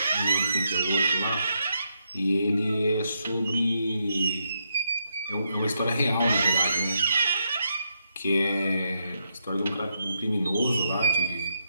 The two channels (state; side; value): inverted; both; correlation -0.80